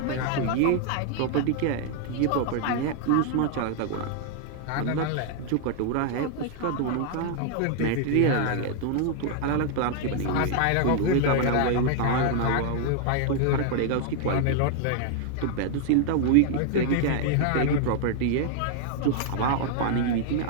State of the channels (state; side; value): different; both; correlation 0.00